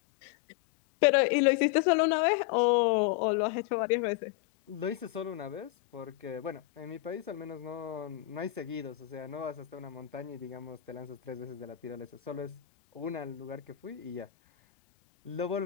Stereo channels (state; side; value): quieter; right; 15.6 dB